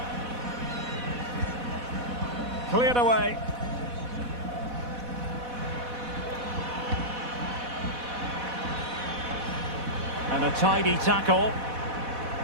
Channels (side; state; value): left; late; 4.1 ms